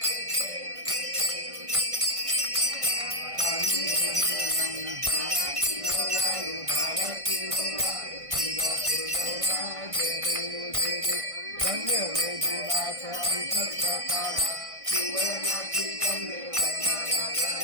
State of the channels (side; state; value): left; late; 1.5 ms